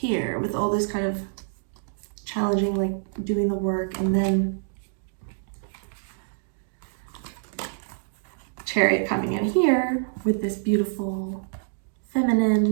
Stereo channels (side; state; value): left; silent; digital silence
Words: with all this kind of challenging, like doing the work, and then Chariot coming in here with this beautiful, feminine,